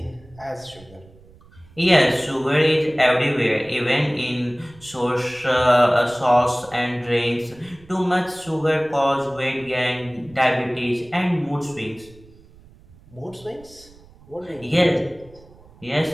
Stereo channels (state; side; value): noise; right; rumble, 25 dB below the sound